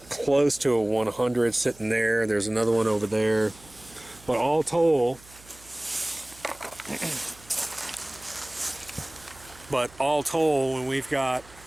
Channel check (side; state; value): right; noise; hum, 23 dB below the sound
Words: close to a 100 sitting there. There's another one over there. But all told, when we've got,